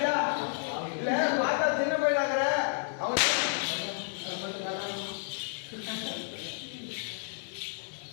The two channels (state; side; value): silent; right; digital silence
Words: இல்ல பார்த்தா சின்ன பையனாங்கிற அவன்